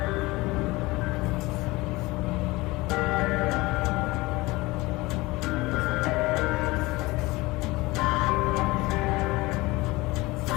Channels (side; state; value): right; quieter; 21.5 dB